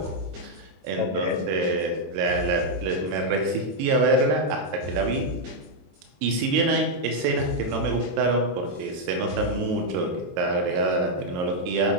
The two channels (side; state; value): left; late; 22 ms